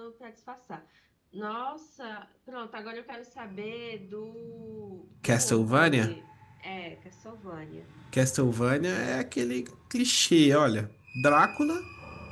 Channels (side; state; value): both; identical; correlation 1.00